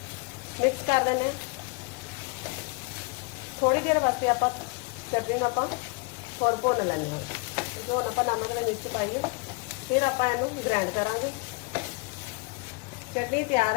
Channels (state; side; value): quieter; right; 27.8 dB